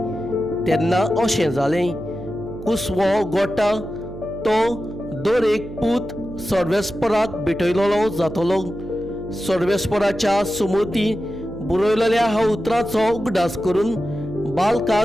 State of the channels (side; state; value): right; noise; hum, 12 dB below the sound